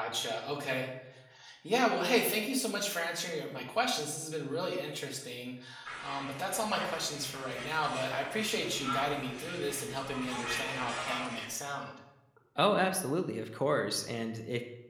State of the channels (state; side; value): identical; both; correlation 1.00